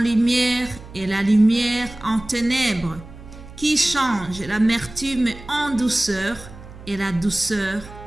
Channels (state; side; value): noise; right; hum, 17 dB below the sound